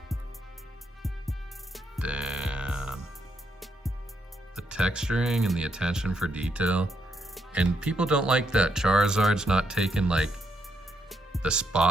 Damn. The texturing and the attention for detail. And people don't like that Charizard's not taking like the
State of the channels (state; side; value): normal; both; correlation 0.78